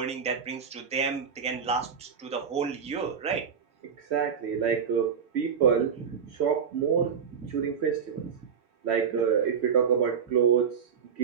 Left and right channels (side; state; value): left; quieter; 6.9 dB